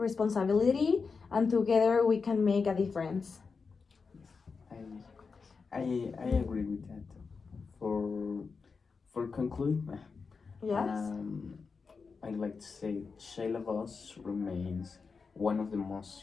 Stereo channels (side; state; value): right; quieter; 4.9 dB